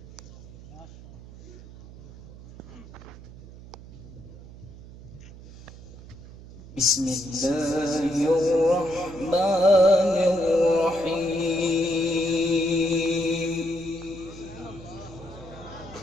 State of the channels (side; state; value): right; noise; hum, 17 dB below the sound